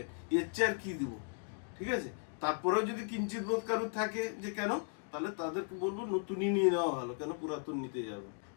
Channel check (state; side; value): silent; right; 53 dB below the other